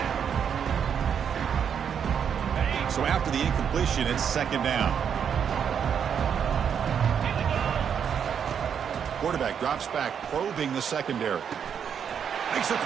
So after the incompletion, it's second down. Quarterback drops back, probing the secondary. Makes a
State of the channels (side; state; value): left; quieter; 7.7 dB